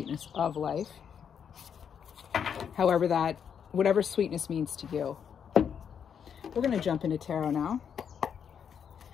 of life. However whatever sweetness means to you. We're going to jump into tarot now.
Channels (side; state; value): right; quieter; 7.7 dB